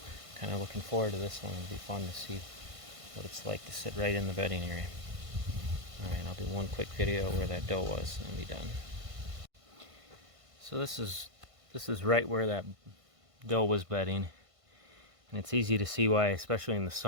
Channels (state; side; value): late; left; 1.5 ms